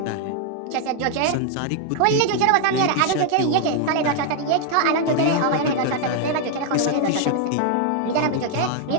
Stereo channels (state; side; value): different; both; correlation 0.00